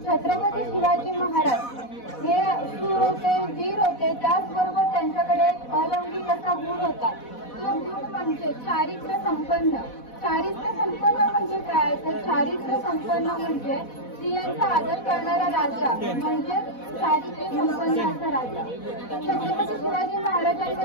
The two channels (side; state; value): right; late; 4.1 ms